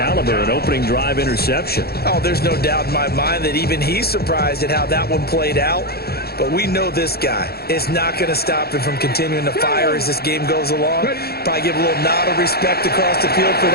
an opening drive interception. Oh, there's no doubt in my mind that even he's surprised at how that one played out. But we know this guy is not going to stop him from continuing to fire as this game goes along. Probably give a little nod of respect across the field for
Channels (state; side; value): late; right; 0.46 ms